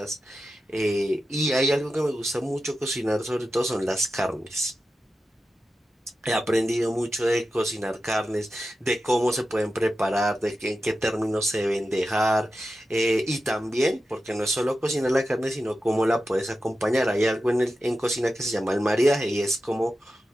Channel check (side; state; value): both; normal; correlation 0.92